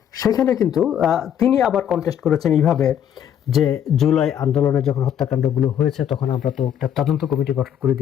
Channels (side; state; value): right; quieter; 9.6 dB